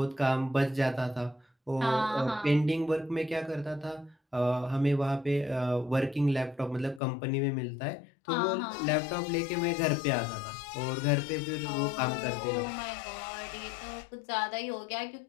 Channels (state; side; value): drops out; right; at 7.0 s